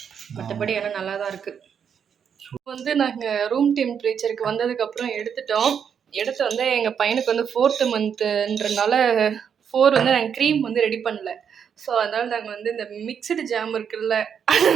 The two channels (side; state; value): left; quieter; 7.6 dB